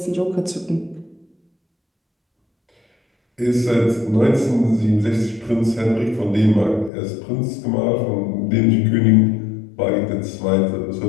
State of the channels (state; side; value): drops out; right; at 6.9 s